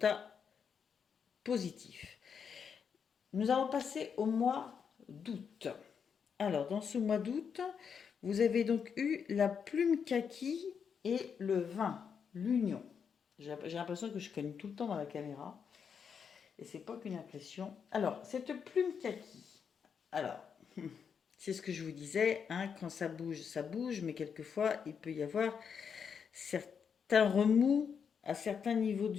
positif. Nous allons passer au mois d'août. Alors, dans ce mois d'août, vous avez donc eu la plume kaki et le vin, l'union. J'ai l'impression que je cogne tout le temps dans la caméra. Et c'est pas qu'une impression. Alors, cette plume kaki. Alors, c'est ce que je vous disais, hein, quand ça bouge, mais quelquefois, il peut y avoir certains remous à certains niveaux de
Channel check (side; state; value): right; quieter; 6.8 dB